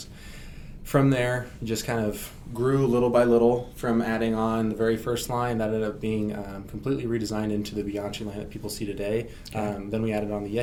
From there, just kind of grew little by little from adding on the very first line that ended up being completely redesigned into the Bianchi line that people see today. Then we added on the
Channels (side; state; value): both; identical; correlation 1.00